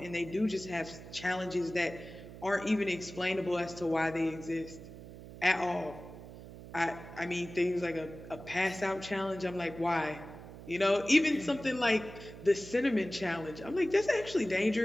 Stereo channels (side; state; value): right; noise; hum, 14 dB below the sound